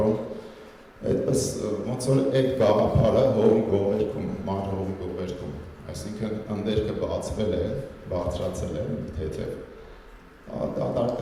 այդպես ոնց որ այդ գաղափարը հողի գովերքում, մայր հողի գովերքում, այսինքն ընդերքը բացվել է, բարձրացել է թեթև,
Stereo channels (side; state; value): both; identical; correlation 1.00